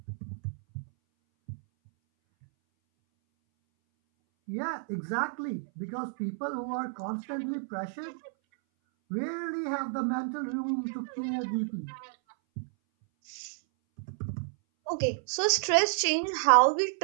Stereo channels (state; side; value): silent; left; 57 dB below the other